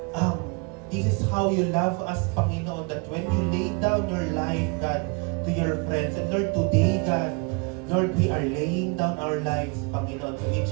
this is how you love us, Panginoon, that when you lay down your life, God, to your friends. And Lord, today, God, Lord, we are laying down our lives, Panginoon, to each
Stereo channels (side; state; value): left; quieter; 31.3 dB